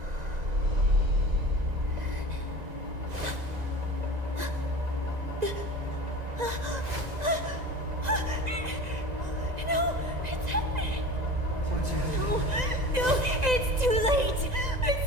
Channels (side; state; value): left; late; 2.0 ms